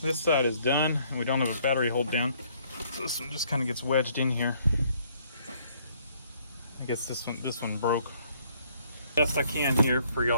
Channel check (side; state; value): both; inverted; correlation -0.65